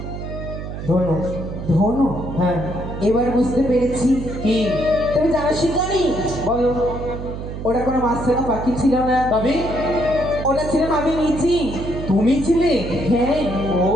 ধনু। ধনু? হ্যাঁ। এবার বুঝতে পেরেছি। কি? তুমি জানো শিকারী? বলো। ওটা কোনো মাছখানা পাখি ছিল না। তবে ওটা ছিলাম আমি নিজে। তুমি ছিলে? হ্যাঁ। ও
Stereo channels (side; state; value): right; noise; hum, 8 dB below the sound